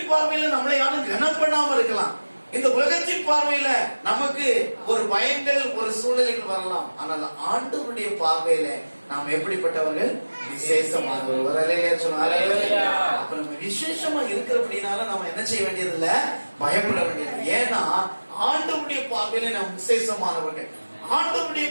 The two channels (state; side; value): inverted; both; correlation -1.00